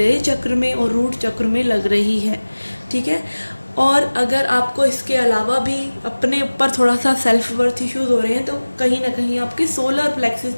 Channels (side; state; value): both; inverted; correlation -1.00